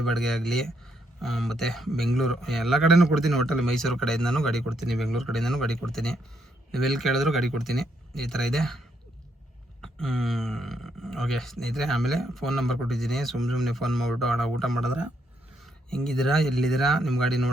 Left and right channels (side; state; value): both; normal; correlation 0.75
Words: ಬಾಡಿಗೆ ಆಗಲಿ, ಮತ್ತು ಬೆಂಗಳೂರು ಎಲ್ಲ ಕಡೆಯೂ ಕೊಡ್ತೀನಿ. ಒಟ್ಟಲ್ಲಿ ಮೈಸೂರು ಕಡೆಯಿಂದನೂ ಗಾಡಿ ಕೊಡ್ತೀನಿ, ಬೆಂಗಳೂರು ಕಡೆಯಿಂದನೂ ಗಾಡಿ ಕೊಡ್ತೀನಿ. ನೀವೆಲ್ಲಿ ಕೇಳಿದ್ರು ಗಾಡಿ ಕೊಡ್ತೀನಿ. ಈ ಥರ ಇದೆ. ಓಕೆ ಸ್ನೇಹಿತರೆ, ಆಮೇಲೆ ಫೋನ್ ನಂಬರ್ ಕೊಟ್ಟಿದ್ದೀನಿ. ಸುಮ್ಮನೆ ಫೋನ್ ಮಾಡಿಬಿಟ್ಟು ಅಣ್ಣ ಊಟ ಮಾಡಿದ್ರೆ ಹೆಂಗಿದ್ದೀರಾ, ಎಲ್ಲಿದ್ದೀರಾ, ನಿಮ್ಮ ಗಾಡಿ